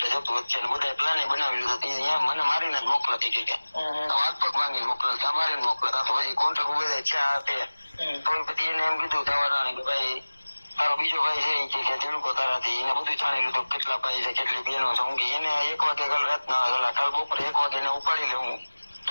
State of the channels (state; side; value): inverted; both; correlation -1.00